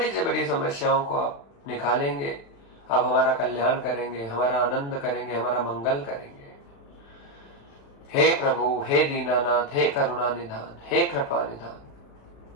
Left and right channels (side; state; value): right; late; 36 ms